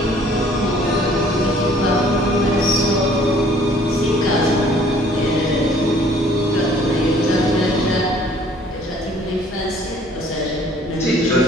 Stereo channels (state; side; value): normal; both; correlation 0.56